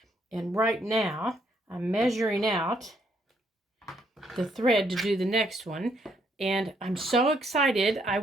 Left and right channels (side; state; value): both; normal; correlation 0.72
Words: and right now I'm measuring out the thread to do the next one, and I'm so excited. I